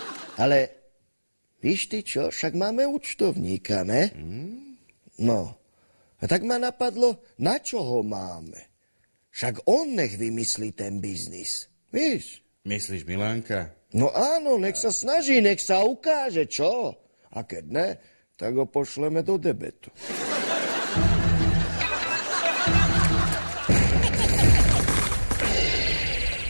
Ale víš ty čo, však máme účtovníka, ne? No, a tak ma napadlo, na čo ho máme? Však on nech vymyslí ten biznis, víš? Myslíš Milánka? No áno, nech sa snaží, nech sa ukáže, čo? A keď ne, tak ho pošleme do debetu.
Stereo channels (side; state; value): both; inverted; correlation -1.00